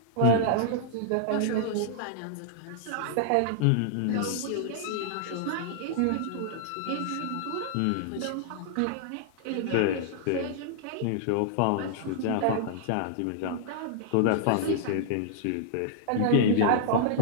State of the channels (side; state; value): both; different; correlation -0.01